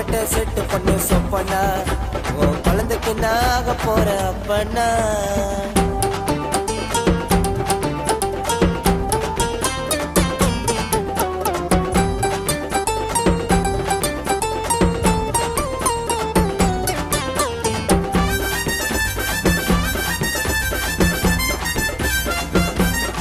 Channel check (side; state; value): both; identical; correlation 1.00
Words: செட்டு பொண்ணு சொப்பண்ணா உன் குழந்தைக்கு நாக போற அப்பண்ணா